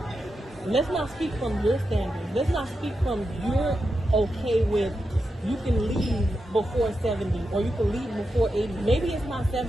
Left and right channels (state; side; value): normal; both; correlation 0.88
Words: Let's not speak from your standards. Let's not speak from you're okay with you can leave before 70 or you can leave before 80. Maybe it's not